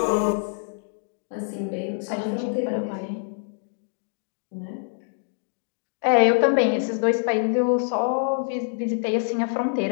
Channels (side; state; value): right; silent; digital silence